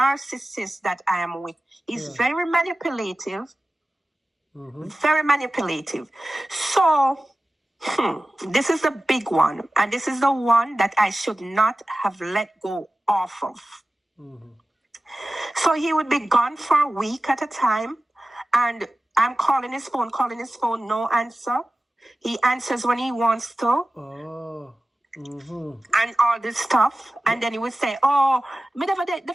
that I am with, he's very manipulative. Very manipulative. So, this is the big one. And this is the one that I should not have let go off of. So he would be gone for a week at a time. And I'm calling his phone, no answer. He answers when he wants to. And all this stuff. And then he would say, the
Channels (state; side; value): normal; both; correlation 0.96